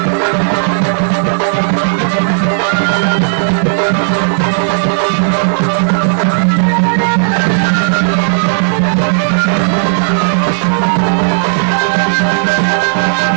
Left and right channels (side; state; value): left; silent; digital silence